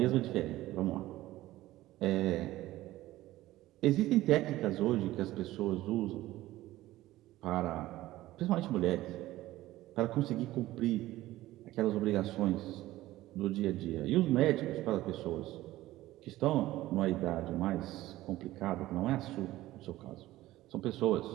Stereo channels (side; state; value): left; quieter; 16.2 dB